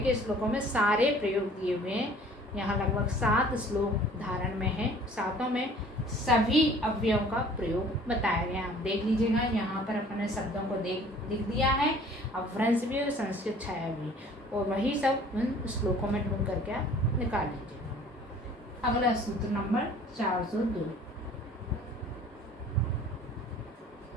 श्लोकों में सारे प्रयोग दिए हुए हैं। यहाँ लगभग 7 श्लोक धारण में है, सातों में सभी अव्ययों का प्रयोग बताया गया। आप देख लीजिएगा, यहाँ पर अपने शब्दों को लिख दिया है, अपभ्रंश भी और संस्कृत छाया भी, और वही सब उन श्लोकों में ढूंढ करके आप निकाल लीजिएगा। अगला सूत्र नंबर 402।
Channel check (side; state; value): both; normal; correlation 0.51